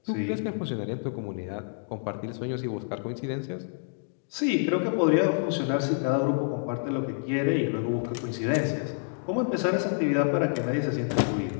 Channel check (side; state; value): right; silent; digital silence